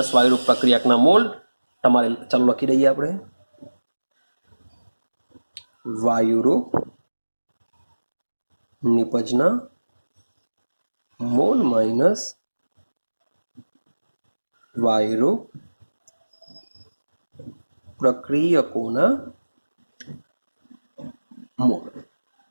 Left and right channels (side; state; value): both; inverted; correlation -1.00